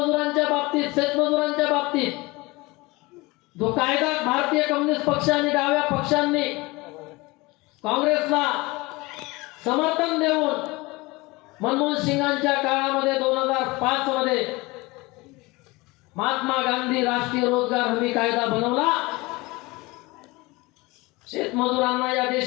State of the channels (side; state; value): right; quieter; 23.0 dB